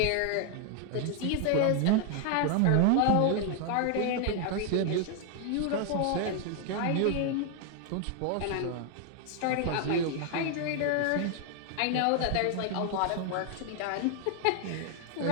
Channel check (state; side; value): different; both; correlation 0.00